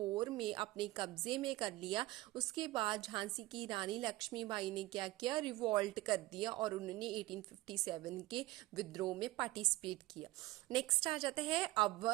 में अपने कब्जे में कर लिया, उसके बाद झांसी की रानी लक्ष्मीबाई ने क्या किया, रिवॉल्ट कर दिया और उन्होंने 1857 के विद्रोह में पार्टिसिपेट किया। नेक्स्ट आ जाता है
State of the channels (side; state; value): left; quieter; 18.6 dB